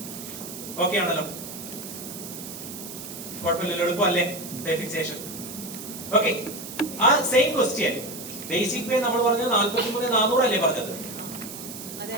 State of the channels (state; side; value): noise; right; hiss, 11 dB below the sound